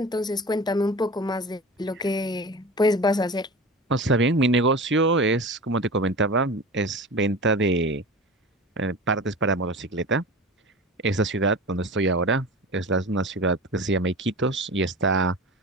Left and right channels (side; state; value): both; normal; correlation 0.33